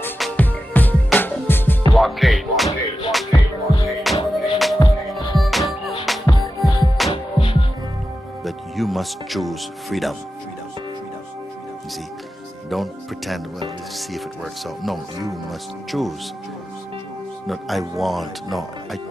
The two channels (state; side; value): normal; both; correlation 0.92